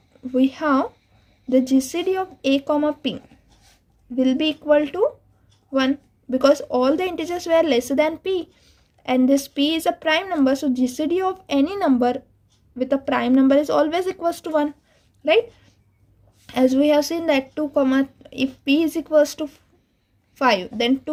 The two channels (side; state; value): both; identical; correlation 1.00